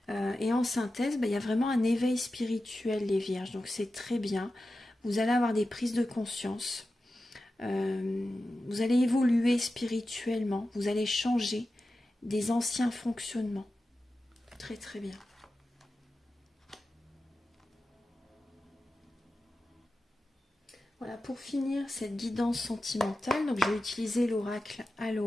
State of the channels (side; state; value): both; normal; correlation 0.93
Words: Et en synthèse, il y a vraiment un éveil spirituel, les vierges. Donc c'est très bien. Vous allez avoir des prises de conscience. Vous allez évoluer spirituellement. Vous allez changer des anciens fonctionnements. Très très bien. Voilà, pour finir cette guidance sentimentale, donc je vais utiliser l'oracle